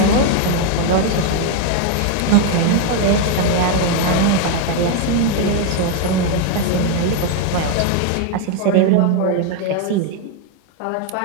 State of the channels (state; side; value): different; both; correlation 0.01